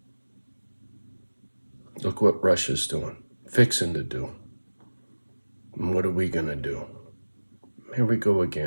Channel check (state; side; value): inverted; both; correlation -1.00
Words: Look what Russia's doing, fixing to do. And what are we gonna do? Here we go